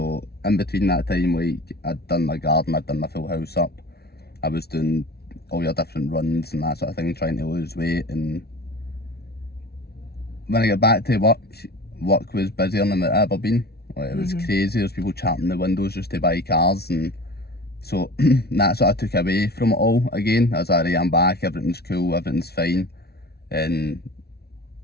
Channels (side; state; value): right; late; 0.46 ms